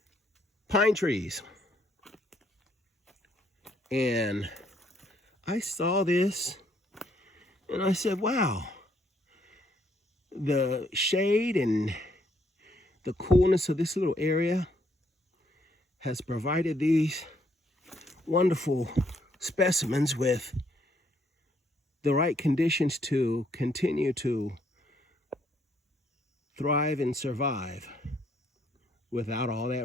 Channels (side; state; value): both; normal; correlation 0.70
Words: pine trees. And I saw this and I said, wow, the shade and the coolness of this little area has provided these wonderful specimens with the right conditions to continue to thrive and survive without all that